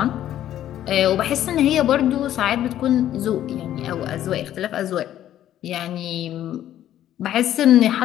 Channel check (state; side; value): quieter; right; 11.9 dB